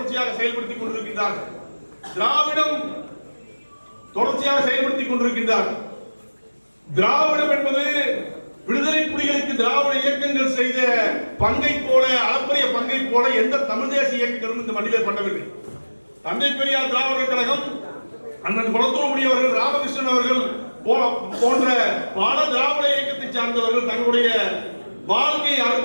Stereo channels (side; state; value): both; inverted; correlation -1.00